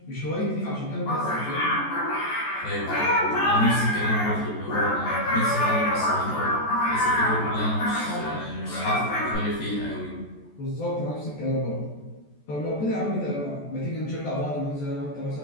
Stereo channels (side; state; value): right; late; 14 ms